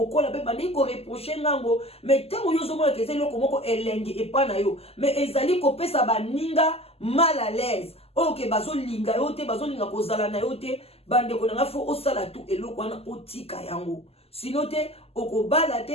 pe bandi ko reprocher ngango mais tango yo zo mona keze eloko moko elenge epana yo mais ezali ko pesa baninga mal à l'aise ok bazo linga yo te bazo linga kozala na yo te bande ko nanga fo osala tu eloko wana otika yango sinon te okobala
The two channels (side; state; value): right; late; 0.29 ms